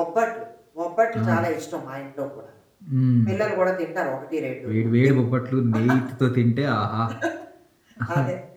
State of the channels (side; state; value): both; identical; correlation 1.00